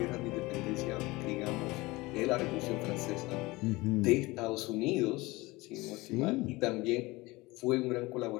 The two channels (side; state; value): right; quieter; 21.7 dB